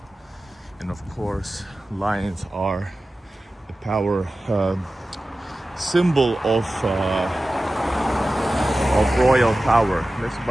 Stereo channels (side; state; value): both; normal; correlation 0.95